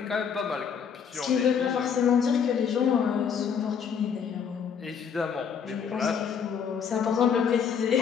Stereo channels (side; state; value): right; quieter; 7.1 dB